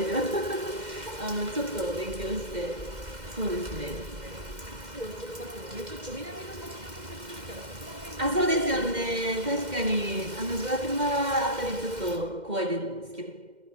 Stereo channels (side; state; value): left; late; 2.1 ms